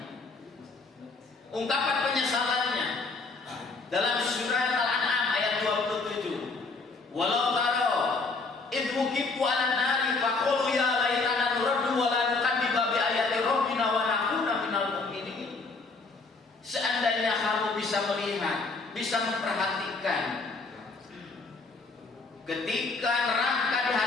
Ungkapan penyesalannya dalam surat Al-An'am ayat 27. Walau taro idh wuqifu 'alan nari faqulu ya laitana nuraddu wa la nukadziba bi ayati rabbina wa nakuna minal mu'minin. Seandainya kamu bisa melihat, bisa memperhatikan ketika neraka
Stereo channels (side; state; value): right; quieter; 3.9 dB